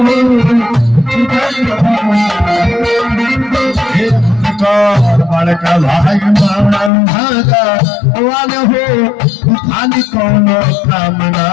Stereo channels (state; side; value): drops out; right; at 6.9 s